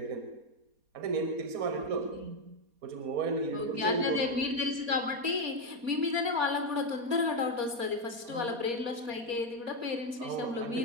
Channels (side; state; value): left; late; 4.2 ms